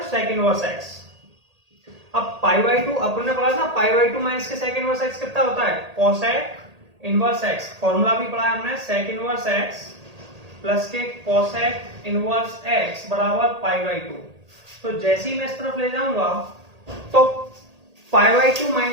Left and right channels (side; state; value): left; late; 1.8 ms